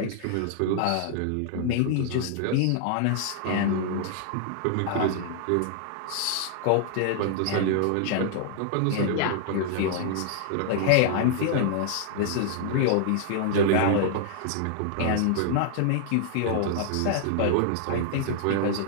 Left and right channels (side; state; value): both; different; correlation -0.01